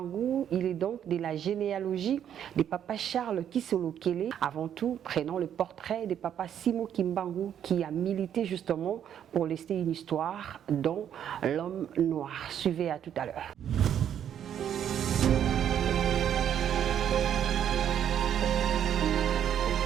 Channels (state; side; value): quieter; left; 9.5 dB